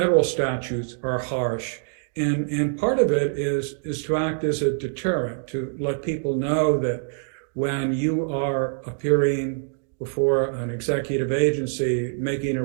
statutes are harsh. And part of it is to act as a deterrent, to let people know that when you are appearing before an executive agency making a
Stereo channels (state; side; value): silent; left; digital silence